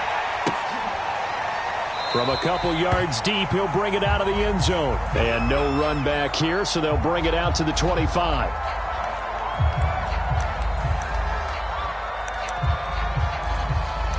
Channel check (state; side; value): identical; both; correlation 1.00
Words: From a couple yards deep, he'll bring it out of the end zone. And no run back here, so they'll bring it out to the 25.